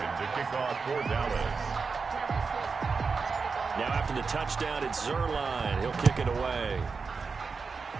to kick off for Dallas. Now after the touchdown, it's Zuerlein. He'll kick it away.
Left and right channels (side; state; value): left; quieter; 4.9 dB